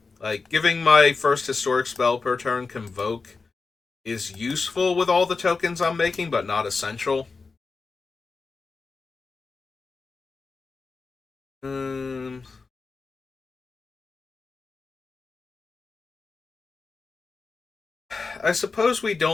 Like, giving my first historic spell per turn Convoke is useful with all the tokens I'm making, but not essential. Um, I suppose we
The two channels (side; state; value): right; quieter; 4.4 dB